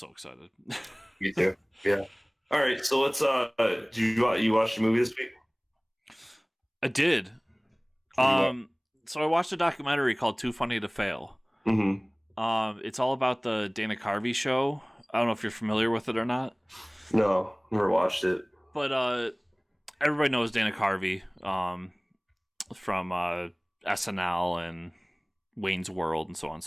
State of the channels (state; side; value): identical; both; correlation 1.00